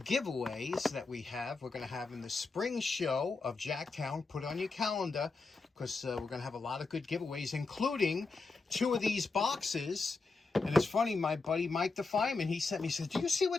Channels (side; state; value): right; quieter; 4.0 dB